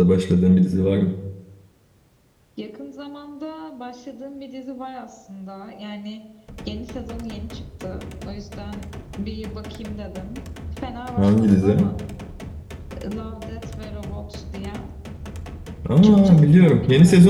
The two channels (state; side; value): identical; both; correlation 1.00